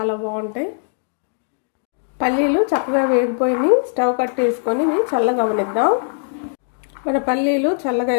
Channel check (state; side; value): silent; right; 66 dB below the other